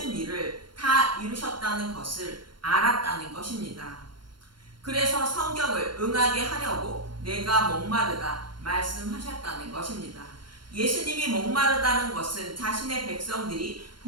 일을 다 이루셨다는 것을 알았다는 것입니다. 그래서 성경을 응하게 하려고 내가 목마르다 말씀하셨다는 것입니다. 예수님이 목마르다는 것은 자신의 백성들이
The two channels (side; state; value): left; late; 0.72 ms